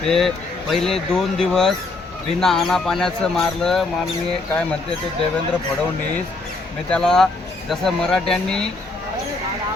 ते पहिले 2 दिवस बिना आना पाण्याचं मारलं. माननीय काय म्हणते ते देवेंद्र फडणवीस, मी त्याला जसं मराठ्यांनी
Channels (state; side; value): quieter; right; 3.3 dB